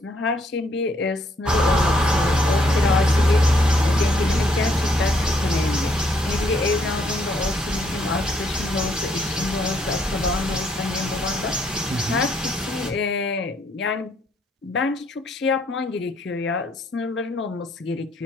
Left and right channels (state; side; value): normal; both; correlation 0.70